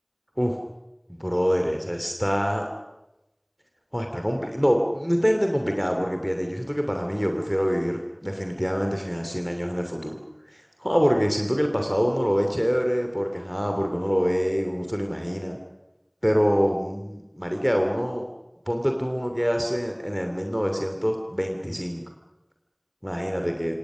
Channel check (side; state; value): both; identical; correlation 1.00